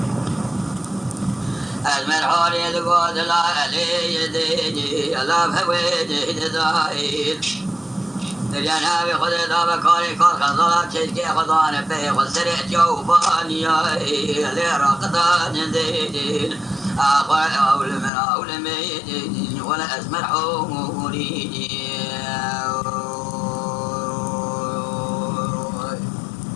أزمر حوري دقود لا علي يديني لا بويدي دزايل الجناب خذ ذا بكاري كار خزالات شيكي خزان بي خسرت جوباني لرقدان زيدين أخوة أول من أول ميدين ولا أزمر حوري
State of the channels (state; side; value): drops out; right; at 18.1 s